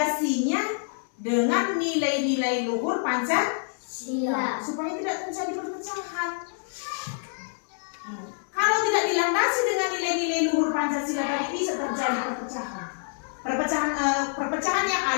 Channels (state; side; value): silent; right; 58 dB below the other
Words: dengan nilai-nilai luhur Pancasila supaya tidak terjadi perpecahan. Kalau tidak dilandasi dengan nilai-nilai luhur Pancasila tadi, bisa terjadi perpecahan. Perpecahan yang